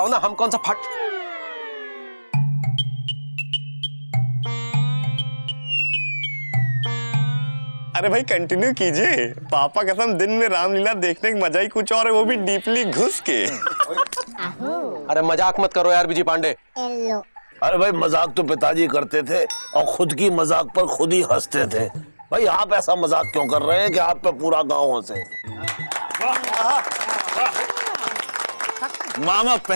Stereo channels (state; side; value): inverted; both; correlation -1.00